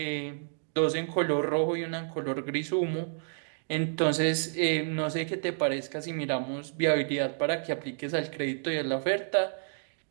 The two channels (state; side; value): silent; left; digital silence